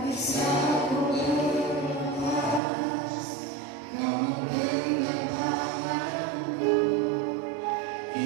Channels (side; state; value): left; drops out; at 2.6 s